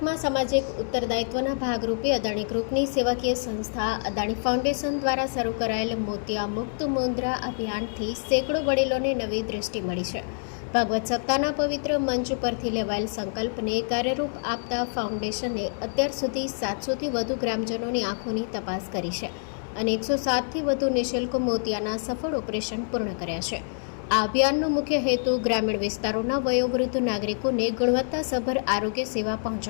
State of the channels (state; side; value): silent; right; digital silence